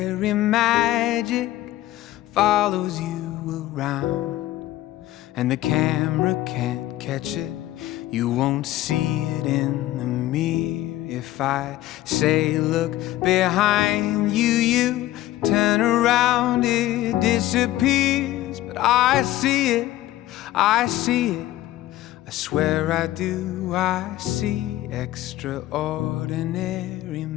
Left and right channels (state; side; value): quieter; right; 15.1 dB